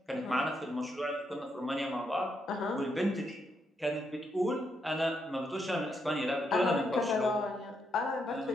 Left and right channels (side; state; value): both; normal; correlation 0.79